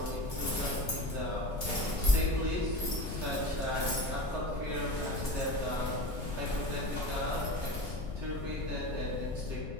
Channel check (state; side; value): noise; left; rumble, 7 dB below the sound